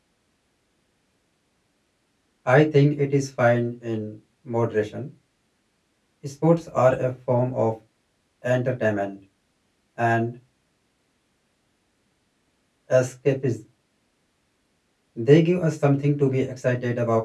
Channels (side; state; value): both; identical; correlation 1.00